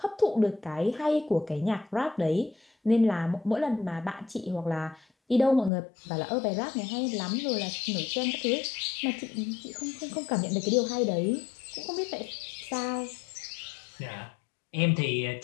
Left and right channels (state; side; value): drops out; right; at 5.7 s